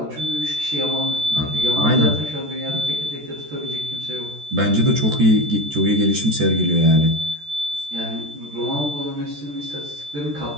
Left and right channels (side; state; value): left; late; 14 ms